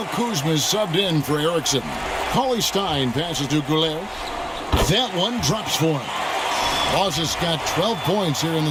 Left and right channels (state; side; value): identical; both; correlation 1.00